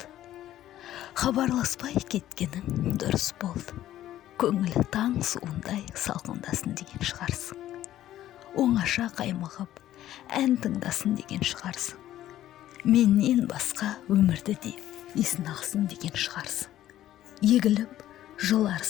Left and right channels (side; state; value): right; quieter; 13.1 dB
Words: Хабарласпай кеткенің дұрыс болды. Көңілі таң суындай салқындасын деген шығарсың. Оңаша қаймығып, ән тыңдасын деген шығарсың. Менен басқа өмірді де есін ақсын деген шығарсың. Егіліп,